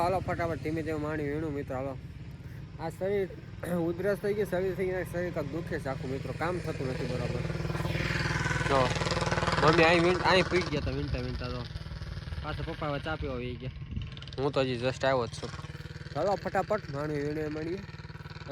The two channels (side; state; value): both; identical; correlation 1.00